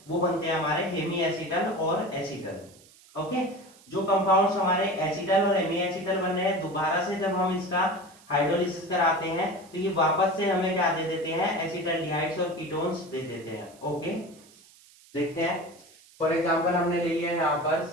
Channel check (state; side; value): noise; right; hiss, 25 dB below the sound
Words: वो बनते हैं हमारे हेमी एसिटल और एसिटल। ओके, जो कंपाउंड्स हमारे एसिटल और हेमी एसिटल बन रहे हैं, दोबारा से जब हम इसका हाइड्रोलिसिस कराते हैं तो ये वापस से हमें क्या दे देते हैं, एसिटल्डिहाइड्स और कीटोन्स दे देते हैं। ओके, देखते हैं। फॉर एग्जांपल हमने ले लिया यहाँ पर